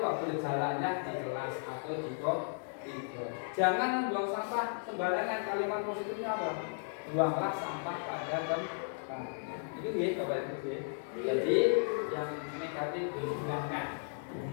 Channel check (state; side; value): silent; right; digital silence